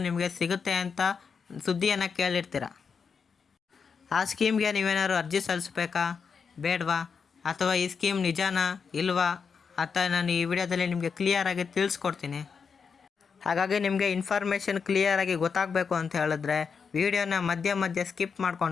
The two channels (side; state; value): right; quieter; 5.9 dB